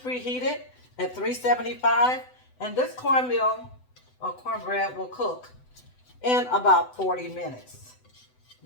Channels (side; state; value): right; late; 8.0 ms